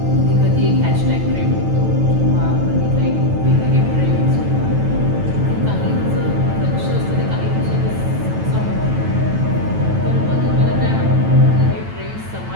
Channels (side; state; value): left; late; 9.1 ms